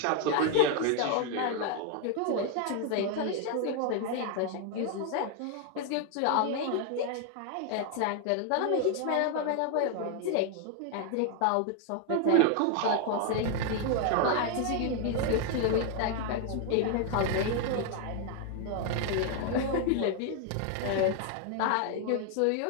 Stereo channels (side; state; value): both; different; correlation 0.01